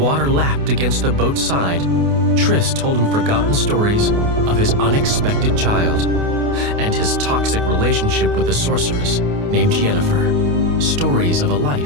lapped against the boat's side, Triss told him forgotten stories of his unexpected child and his toxic relationship with a sorceress named Yennefer. Stories of a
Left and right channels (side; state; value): left; late; 28 ms